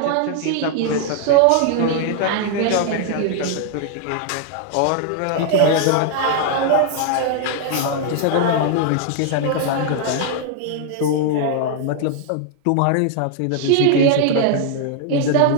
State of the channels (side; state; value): both; different; correlation 0.00